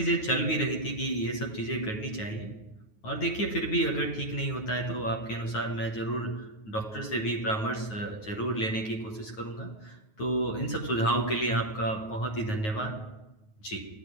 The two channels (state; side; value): late; right; 9.3 ms